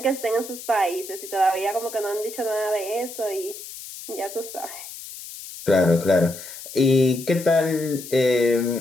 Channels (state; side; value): noise; left; hiss, 13 dB below the sound